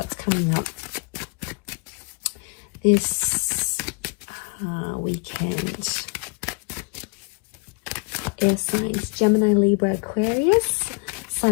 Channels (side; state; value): right; quieter; 34.1 dB